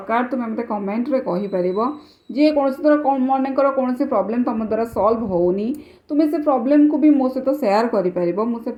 तुम्हें मते कमेंट रे कहि परिबो जे कौन तरह मनकर कौन प्रॉब्लम तुम द्वारा सॉल्व होनी तुम्हें से प्रॉब्लम को भी मो सहित शेयर करि परिबो मु से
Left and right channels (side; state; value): both; identical; correlation 1.00